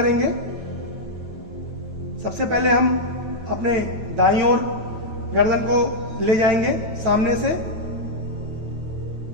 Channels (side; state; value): left; late; 9.2 ms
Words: सबसे पहले हम अपने दाईं ओर गर्दन को ले जाएंगे सामने से,